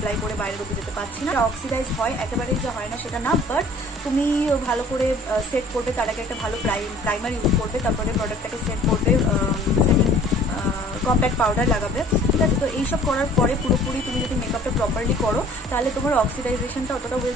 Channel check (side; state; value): both; normal; correlation 0.52